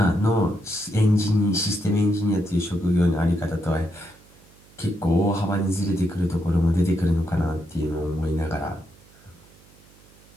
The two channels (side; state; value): right; noise; hum, 27 dB below the sound